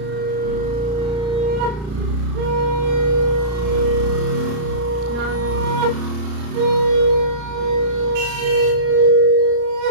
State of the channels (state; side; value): late; left; 34 ms